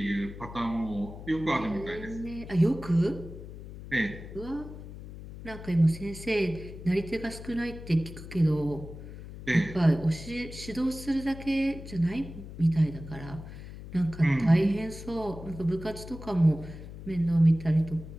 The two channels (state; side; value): noise; left; hum, 13 dB below the sound